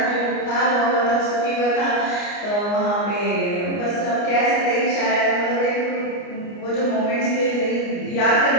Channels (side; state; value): right; late; 29 ms